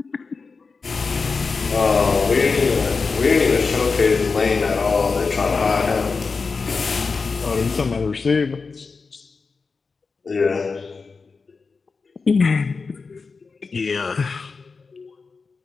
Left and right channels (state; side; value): quieter; right; 4.6 dB